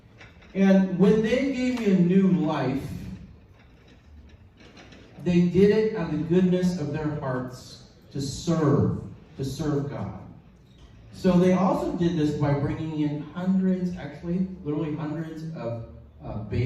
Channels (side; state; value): both; identical; correlation 1.00